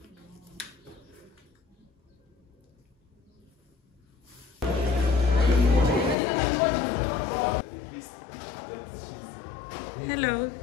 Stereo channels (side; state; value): right; drops out; at 6.2 s